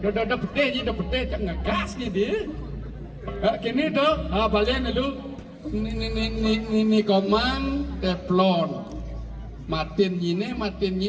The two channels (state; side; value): identical; both; correlation 1.00